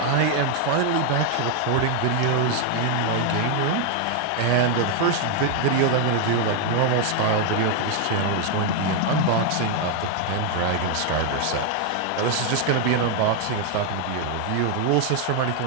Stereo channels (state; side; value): different; both; correlation 0.00